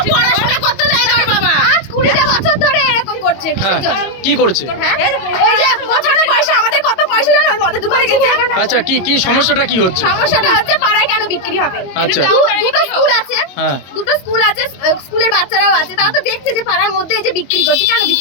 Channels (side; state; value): right; late; 22 ms